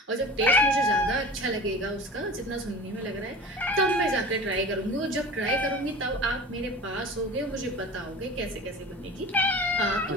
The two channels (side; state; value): both; normal; correlation 0.36